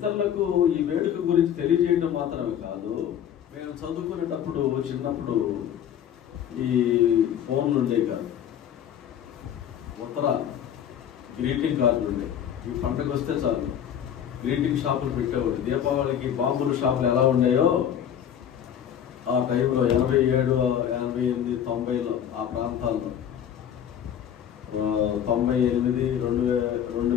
ఈ వేడుక గురించి తెలియజేయడం మాత్రమే కాదు. మేము చదువుకునేటప్పుడు చిన్నప్పుడు ఈ ఫోన్లు ఉండే కాదు, ఉత్తరాలు, గ్రీటింగ్ కార్డులు ఉండే. ఈ పండుగ వస్తే చాలు గ్రీటింగ్ షాపులు పెట్టేవాడు. దీపావళికి బాంబుల షాపులు ఎలా ఉన్నాయో ఆ టైంలో 87, 88, 90లో ఆ ప్రాంతాల్లో 98,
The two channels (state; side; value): quieter; right; 9.4 dB